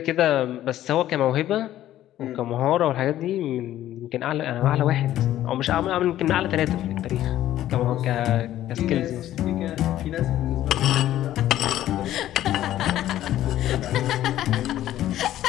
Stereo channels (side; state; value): right; quieter; 13.1 dB